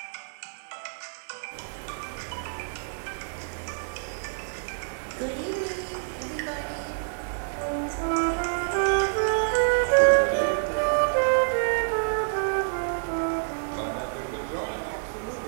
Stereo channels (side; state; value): left; silent; 57 dB below the other